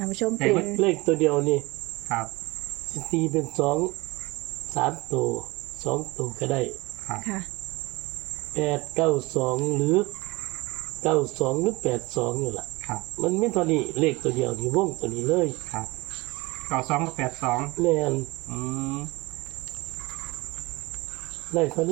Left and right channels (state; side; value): quieter; left; 22.8 dB